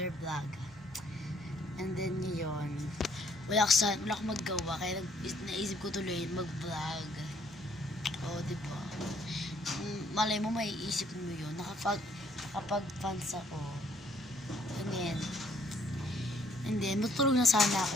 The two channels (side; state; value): both; normal; correlation 0.64